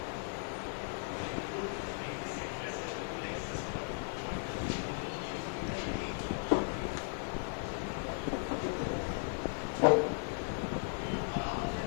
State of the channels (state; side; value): silent; right; 53 dB below the other